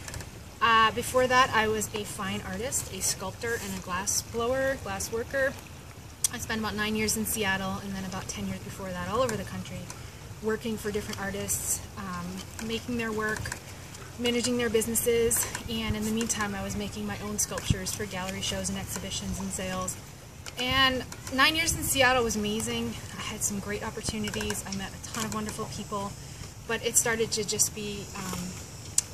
Before that, I was a fine artist, a sculptor, and a glass blower, glass worker. I spent about 9 years in Seattle, and then about 10 years before that all over the country, working for different artists, making their work, managing their businesses, and in the meantime I was making my own sculptures for gallery shows and exhibitions and sales. And 9 years in Seattle was amazing. I had some great opportunities. I met a ton of wonderful people, but it started to just be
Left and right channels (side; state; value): both; identical; correlation 1.00